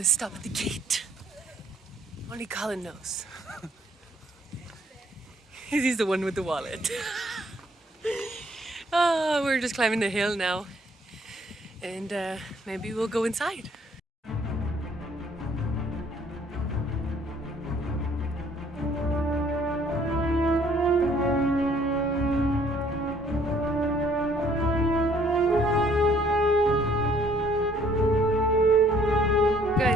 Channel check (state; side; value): normal; both; correlation 0.61